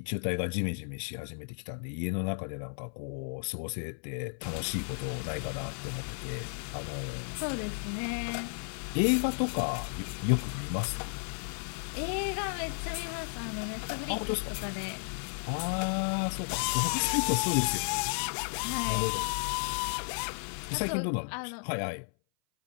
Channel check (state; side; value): silent; right; 56 dB below the other